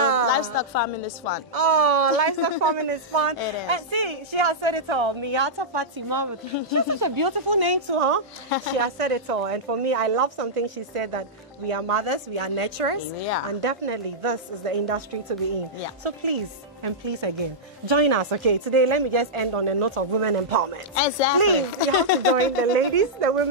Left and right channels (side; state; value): both; normal; correlation -0.11